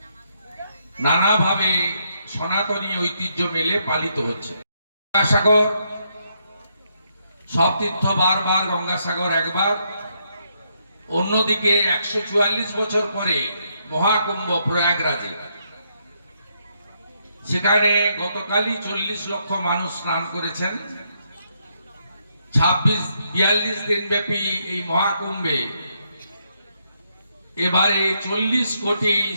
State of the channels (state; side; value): inverted; both; correlation -0.76